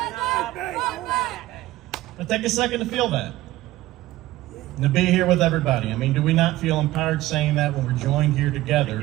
up and fight back. Now take a second to feel that. And to be here with everybody. I mean, do we not feel empowered saying that when we're joined here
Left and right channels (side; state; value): left; quieter; 16.6 dB